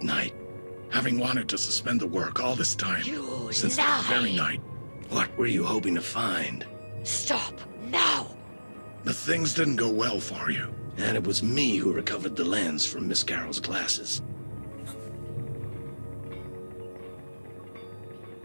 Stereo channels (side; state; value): both; inverted; correlation -1.00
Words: night? Having wanted to suspend the work all this time. Since that very night. What were you hoping to find? Stop, now! The things didn't go well for you. And it was me who recovered the lens from Miss Carole's glasses.